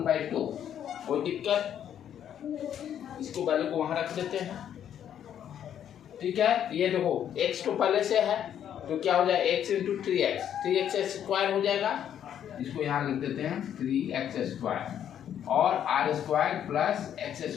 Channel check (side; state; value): right; quieter; 9.7 dB